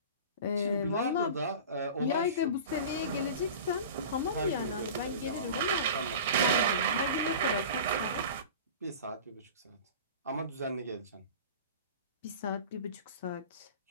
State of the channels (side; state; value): both; inverted; correlation -0.36